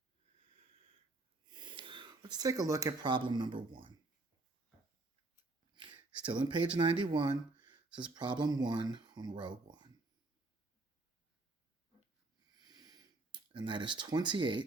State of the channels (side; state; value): left; quieter; 3.1 dB